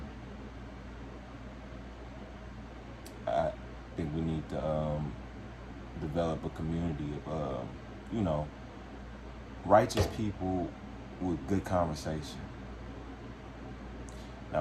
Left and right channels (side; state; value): both; identical; correlation 1.00